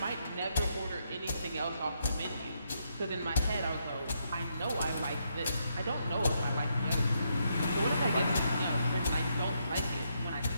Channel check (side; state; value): both; inverted; correlation -0.78